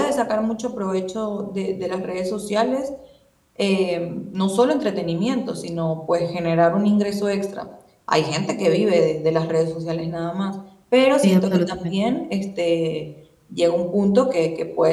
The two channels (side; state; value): both; identical; correlation 1.00